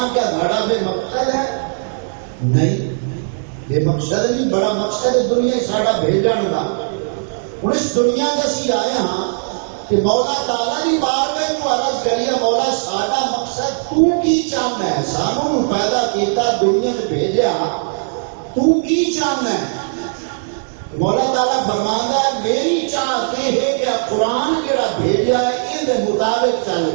کیا بڑا بے مقصد ہے؟ نہیں، بے مقصد نہیں. بڑا مقصد ہے دنیا ساڈا بھیجن کا. ہوں اس دنیا کے اسی آئے ہاں کہ مولا تعالیٰ کی بارگاہ کو عرض کریے مولا ساڈا مقصد تو کی چاہنا ہے؟ سانو پیدا کیتا دنیا میں بھیجا، تو کی چاہنا ہے؟ مولا تعالیٰ فرماندا ہے میری چاہت یہ ہے کہ قرآن جڑا بھیجا ہے یہ مطابق چل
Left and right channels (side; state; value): left; silent; digital silence